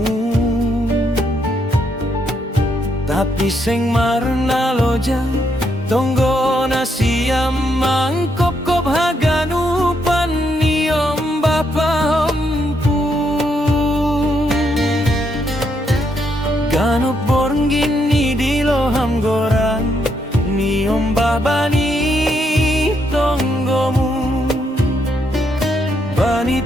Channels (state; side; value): normal; both; correlation 0.76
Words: tapi seng marna loja tonggo na siam mangkop-kop haganupan niom bapa empu ganup borngin ni diloham gorang niom babani tonggomu bani